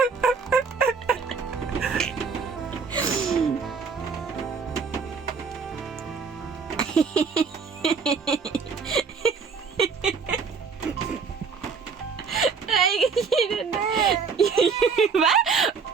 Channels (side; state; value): left; quieter; 5.4 dB